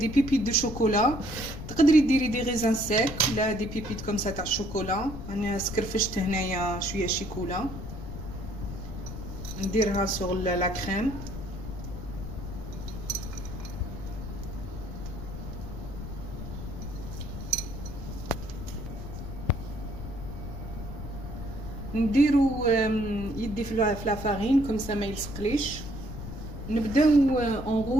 بيبيت دو شوكولا. تقدري ديري دي غيزان سيك ولا دي بيبيت كوم سا تاع الشوكولا. انا سكرفشت هنايا شويه شيكولا نديرها سور لا كريم. نديرو يدي في لا فارين كوم سا ما يلصقليش. نبداو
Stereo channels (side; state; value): left; noise; rumble, 9 dB below the sound